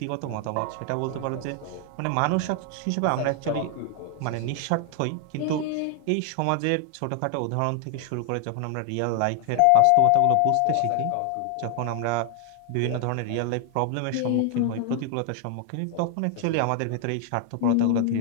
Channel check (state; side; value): different; both; correlation 0.00